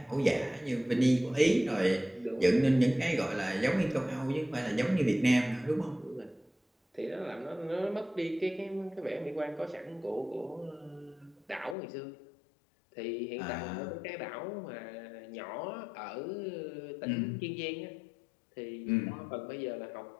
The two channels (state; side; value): drops out; right; at 11.8 s